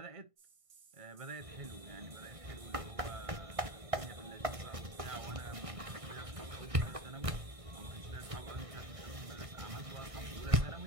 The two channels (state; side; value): late; left; 1.5 ms